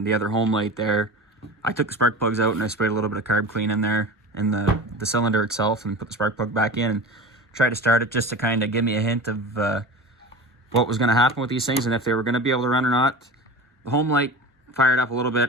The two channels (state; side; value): normal; both; correlation 0.33